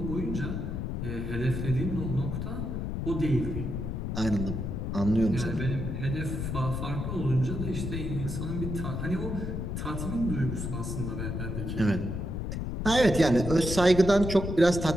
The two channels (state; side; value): noise; left; rumble, 3 dB below the sound